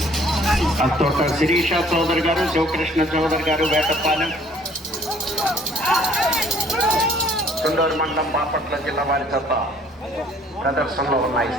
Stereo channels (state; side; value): normal; both; correlation 0.58